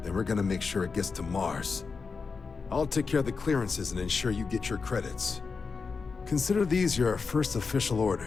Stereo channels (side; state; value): right; quieter; 4.9 dB